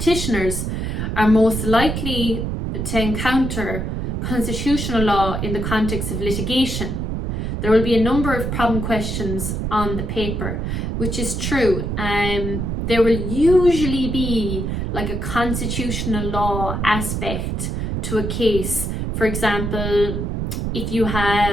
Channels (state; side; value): noise; right; rumble, 2 dB below the sound